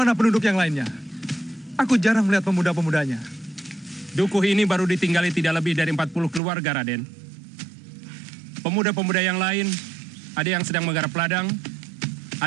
penduduk yang lainnya? Aku jarang melihat pemuda-pemudanya. Dukuh ini baru ditinggali tidak lebih dari 40 keluarga, Raden. Pemuda-pemuda yang lain, ada yang sedang menggarap ladang,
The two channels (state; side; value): drops out; left; at 6.4 s